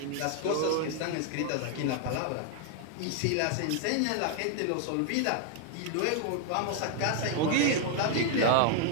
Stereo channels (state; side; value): different; both; correlation 0.00